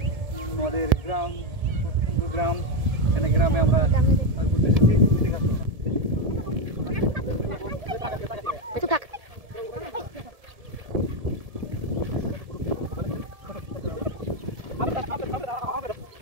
আমাদের গ্রাম, সুন্দর গ্রাম। এখানে গ্রামে আমরা ঘুরতে এসেছি। ঠিক আছে,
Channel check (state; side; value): late; left; 1.7 ms